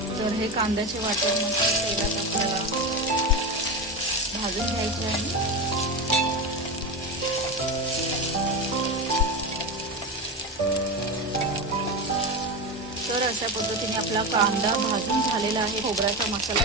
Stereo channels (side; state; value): both; normal; correlation 0.19